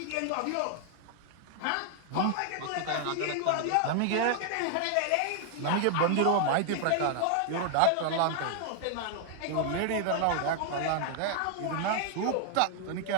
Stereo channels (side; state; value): both; different; correlation 0.00